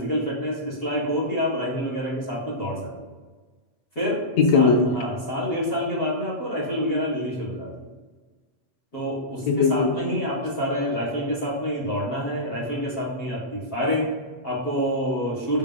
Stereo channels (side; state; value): right; late; 7.4 ms